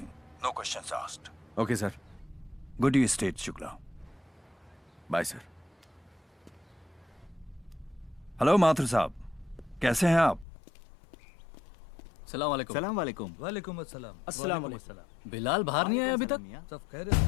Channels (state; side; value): drops out; right; at 10.5 s